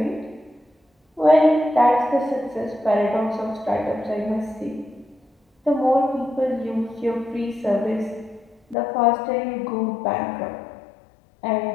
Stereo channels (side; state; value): right; drops out; at 8.8 s